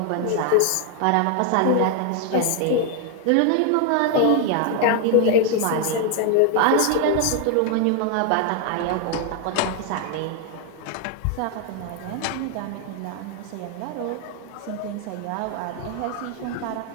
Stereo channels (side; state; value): both; different; correlation 0.00